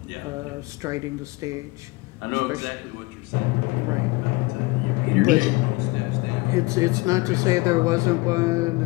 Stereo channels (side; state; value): right; quieter; 23.4 dB